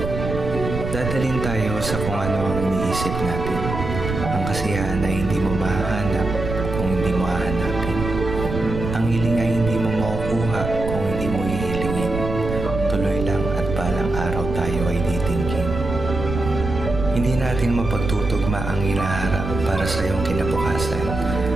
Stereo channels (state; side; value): noise; right; rumble, 5 dB below the sound